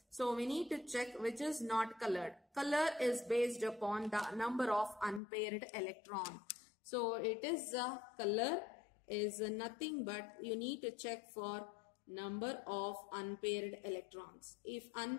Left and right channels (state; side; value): drops out; right; at 5.2 s